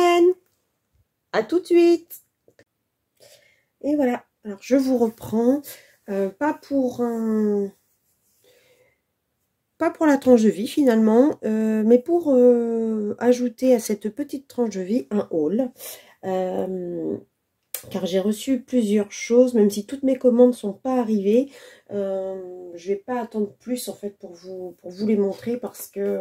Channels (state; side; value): identical; both; correlation 1.00